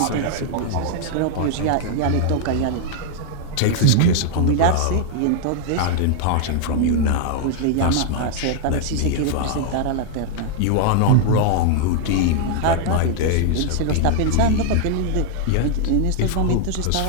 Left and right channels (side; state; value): both; different; correlation 0.00